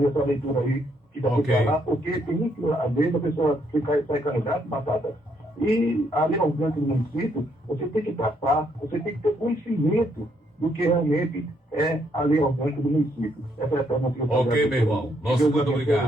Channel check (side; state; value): both; normal; correlation 0.72